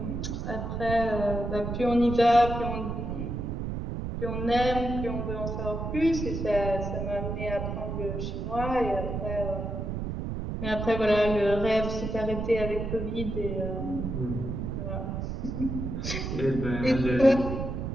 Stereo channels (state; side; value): noise; right; rumble, 4 dB below the sound